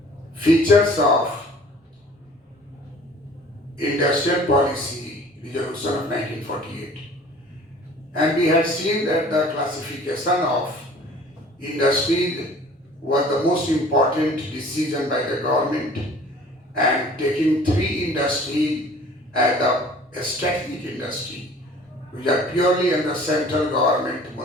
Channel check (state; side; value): normal; both; correlation 0.49